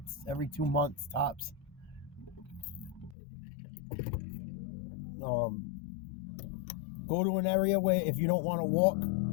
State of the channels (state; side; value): drops out; right; at 3.2 s